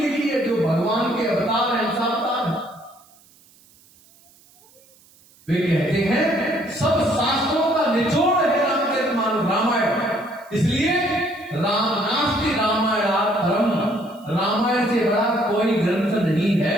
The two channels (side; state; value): right; noise; hiss, 29 dB below the sound